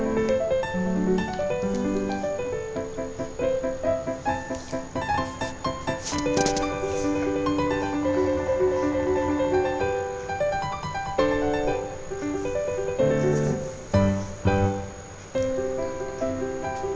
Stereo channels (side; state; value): both; identical; correlation 1.00